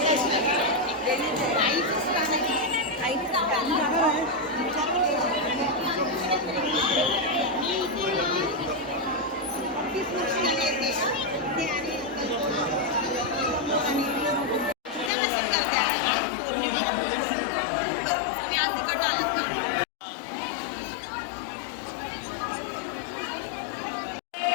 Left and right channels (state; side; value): drops out; right; at 15.1 s